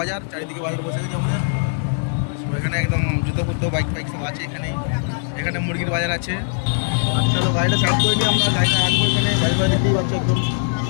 চারিদিকে বাজার বসে গেছে আমাদের সব, এখানে একদম জুতো ফুতো বাইক সব আছে এখানেই। এখানে মুরগির বাজার আছে। চলো গাড়িটা সাইড করে নিই, আমরা গাড়িটা রাখবো এখানে, বাজারে দেখতেই পাচ্ছ একদম।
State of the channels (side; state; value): right; silent; 63 dB below the other